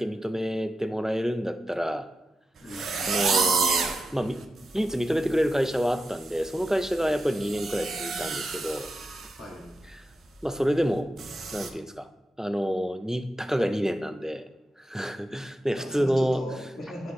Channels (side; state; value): both; normal; correlation 0.90